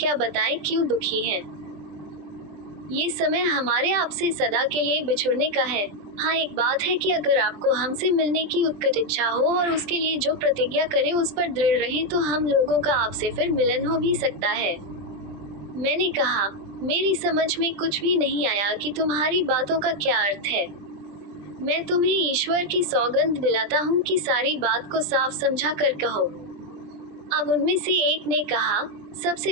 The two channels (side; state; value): left; late; 20 ms